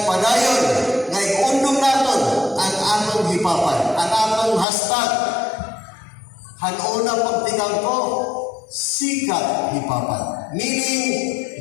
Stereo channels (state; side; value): drops out; right; at 4.7 s